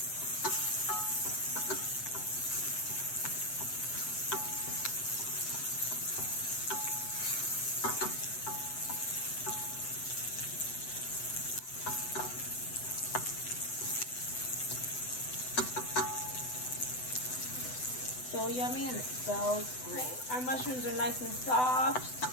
So yummy and it smells great. Our mushrooms are nice and soft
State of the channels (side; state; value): right; late; 7.9 ms